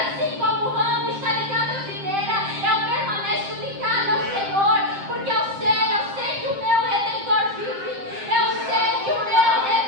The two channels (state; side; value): late; left; 7.6 ms